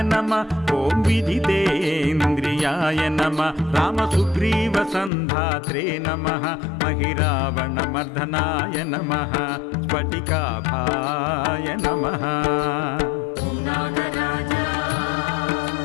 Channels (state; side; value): drops out; right; at 5.1 s